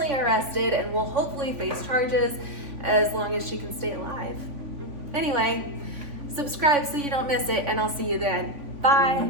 arrested and will hopefully face charges as long as she can stay alive. Anyway, subscribe so you don't miss it, and I'll see you then.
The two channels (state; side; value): late; left; 3.5 ms